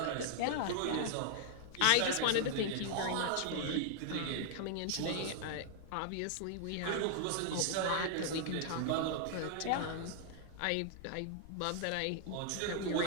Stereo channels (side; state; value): both; different; correlation -0.01